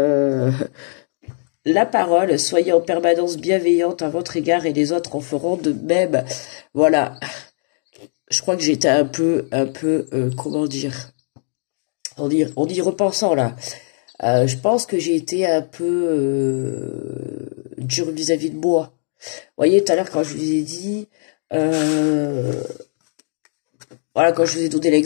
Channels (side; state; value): right; silent; 64 dB below the other